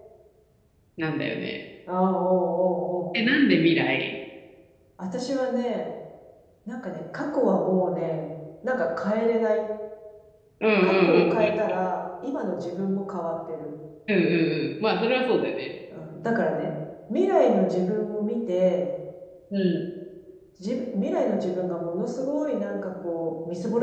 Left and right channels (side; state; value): both; identical; correlation 1.00